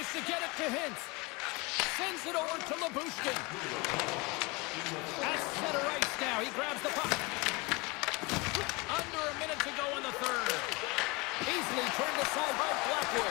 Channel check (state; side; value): quieter; right; 25.9 dB